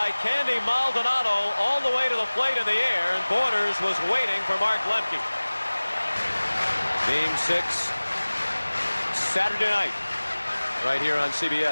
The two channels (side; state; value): both; inverted; correlation -1.00